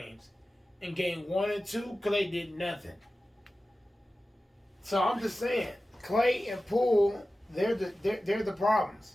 In Game 1 and 2, Klay did nothing. So I'm just saying, Klay and Poole, they're the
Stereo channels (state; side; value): normal; both; correlation 0.95